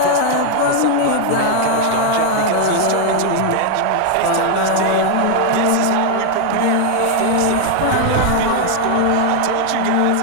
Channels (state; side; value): different; both; correlation 0.00